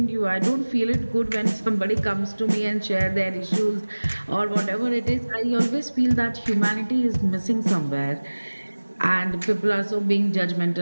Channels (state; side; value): inverted; both; correlation -1.00